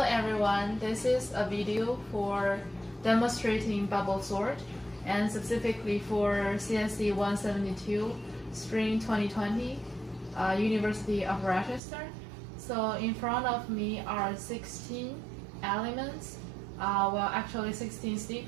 everyone, this is a video for demonstrating bubble sort and specifically for CSC172 Spring2020, University of Rochester. So in front of me are 16 elements, well actually 16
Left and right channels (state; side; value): drops out; left; at 11.8 s